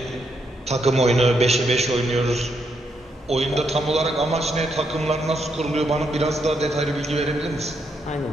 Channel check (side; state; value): both; normal; correlation 0.78